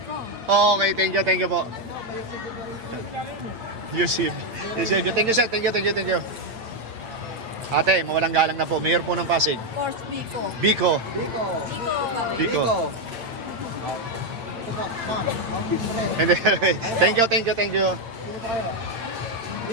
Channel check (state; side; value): late; left; 8.7 ms